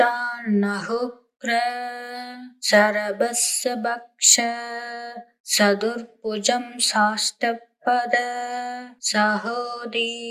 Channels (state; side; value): identical; both; correlation 1.00